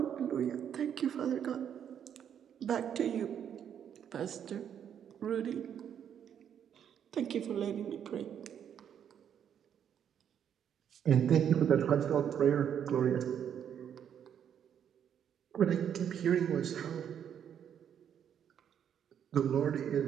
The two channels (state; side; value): quieter; left; 8.8 dB